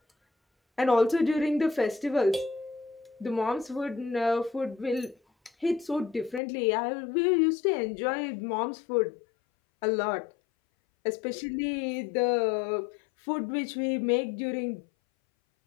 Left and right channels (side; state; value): right; drops out; at 6.4 s